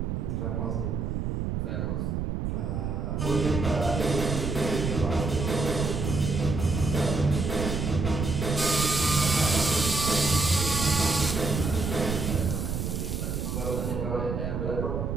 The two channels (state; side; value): noise; right; rumble, 2 dB below the sound